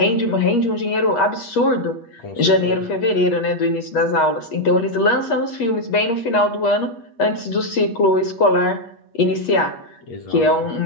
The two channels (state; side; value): late; right; 8.4 ms